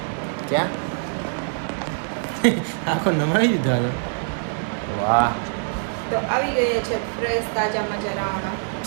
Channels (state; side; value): silent; left; digital silence